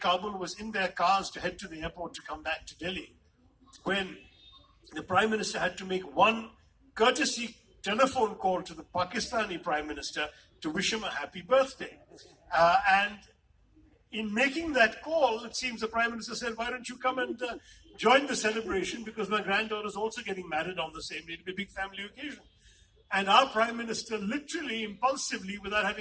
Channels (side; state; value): both; identical; correlation 1.00